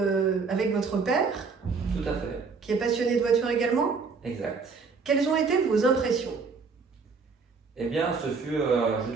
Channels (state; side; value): quieter; left; 4.9 dB